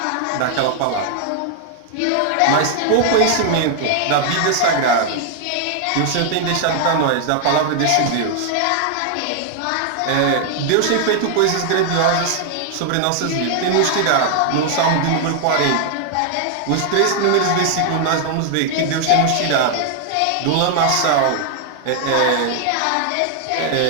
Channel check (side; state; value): both; different; correlation 0.00